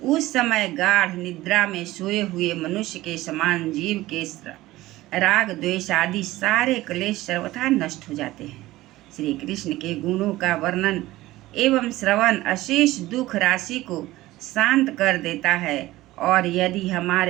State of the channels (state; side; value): quieter; left; 17.3 dB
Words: उस समय गाढ़ निद्रा में सोए हुए मनुष्य के समान जीव के राग द्वेष आदि सारे क्लेश सर्वथा नष्ट हो जाते हैं। श्री कृष्ण के गुणों का वर्णन एवं श्रवण अशेष दुख राशि को शांत कर देता है, और यदि